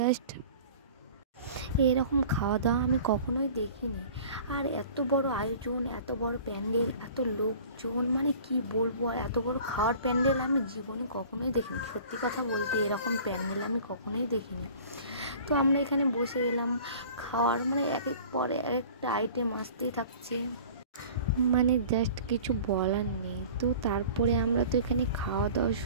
এরকম খাওয়া দাওয়া আমি কখনোই দেখিনি। আর এত বড় আয়োজন, এত বড় প্যান্ডেল, এত লোকজন, মানে কি বলবো। আর এত বড় খাওয়ার প্যান্ডেল আমি জীবনে কখনোই দেখিনি। সত্যি কথা বলতে এরকম প্যান্ডেল আমি কখনোই দেখিনি। তো আমরা এখানে বসে গেলাম খাওয়ার, মানে এক এক পরে এক একটা আইটেম আসতেই থাকছে, মানে জাস্ট কিছু বলার নেই। তো তারপরে আমরা তো এখানে খাওয়া দাওয়া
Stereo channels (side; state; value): both; inverted; correlation -0.45